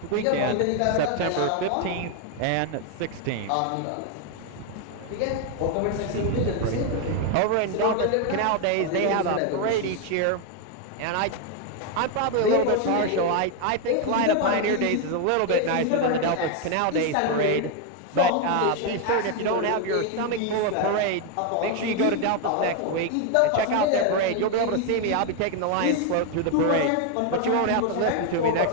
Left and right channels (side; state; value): both; different; correlation 0.01